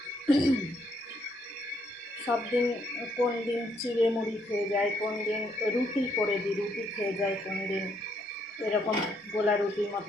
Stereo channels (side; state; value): both; normal; correlation 0.72